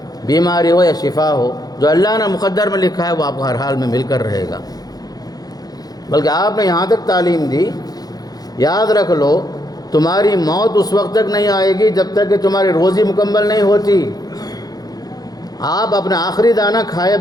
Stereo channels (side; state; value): right; late; 0.19 ms